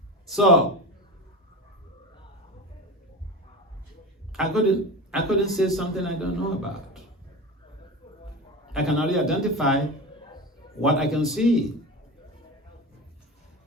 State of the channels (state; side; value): normal; both; correlation 0.27